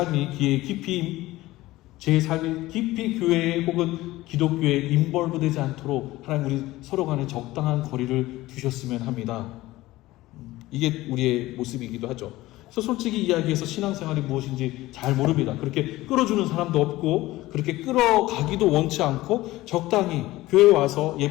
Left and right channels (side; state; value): right; quieter; 17.7 dB